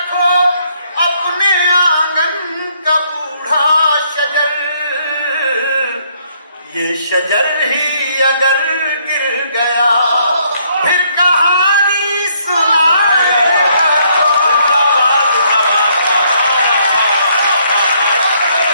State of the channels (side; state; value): both; inverted; correlation -0.69